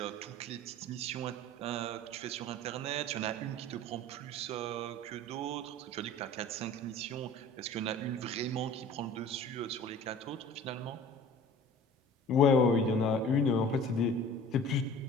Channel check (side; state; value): both; normal; correlation 0.44